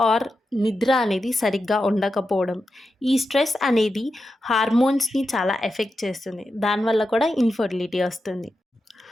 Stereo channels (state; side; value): normal; both; correlation 0.89